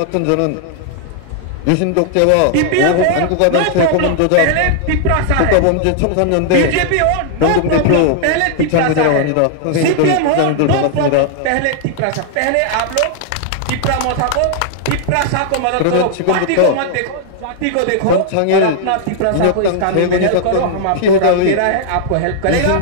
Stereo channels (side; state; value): both; different; correlation -0.01